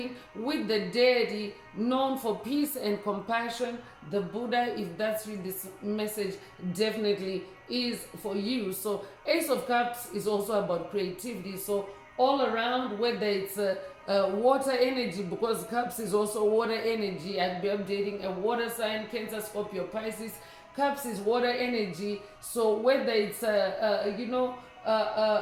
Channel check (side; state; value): both; identical; correlation 1.00